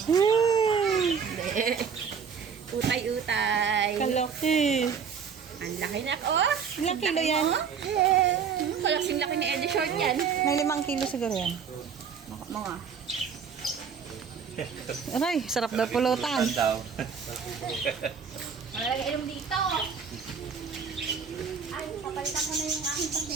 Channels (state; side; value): quieter; left; 6.5 dB